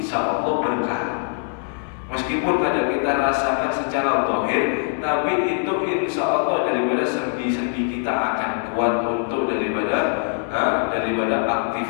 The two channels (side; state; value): right; silent; 64 dB below the other